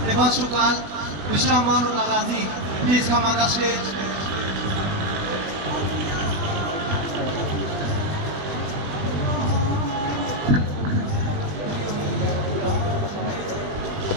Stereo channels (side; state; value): left; late; 20 ms